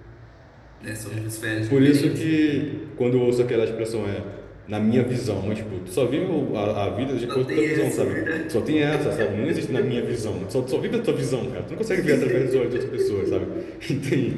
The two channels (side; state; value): both; identical; correlation 1.00